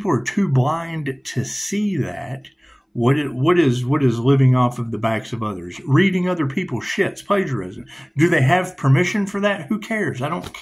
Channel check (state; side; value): identical; both; correlation 1.00